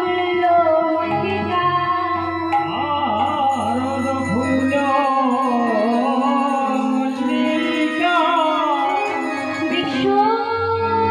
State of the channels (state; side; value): identical; both; correlation 1.00